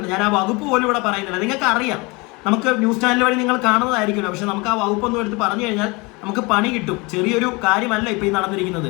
ഞാൻ ആ വകുപ്പ് പോലും ഇവിടെ പറയുന്നില്ല. നിങ്ങൾക്ക് അറിയാം, നമുക്ക് ന്യൂസ് ചാനൽ വഴി നിങ്ങൾ കാണുന്നതായിരിക്കുമല്ലോ. പക്ഷെ നമുക്ക് ആ വകുപ്പൊന്നും എടുത്ത് പറഞ്ഞു കഴിഞ്ഞാൽ നമുക്ക് പണി കിട്ടും. ചെറിയൊരു കാര്യമല്ല ഇപ്പൊ ഈ നടന്നിരിക്കുന്നത്.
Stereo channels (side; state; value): right; quieter; 26.4 dB